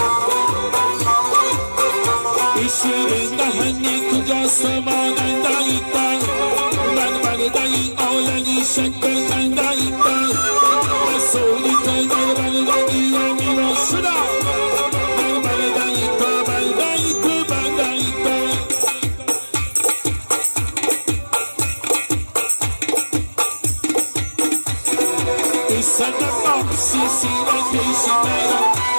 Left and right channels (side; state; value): both; inverted; correlation -1.00